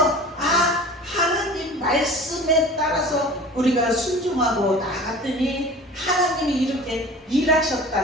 하나님 말씀에 따라서 우리가 순종하고 나갔더니 하나님이 이렇게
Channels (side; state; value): both; normal; correlation 0.40